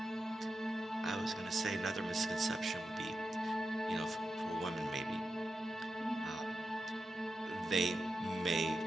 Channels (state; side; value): normal; both; correlation 0.89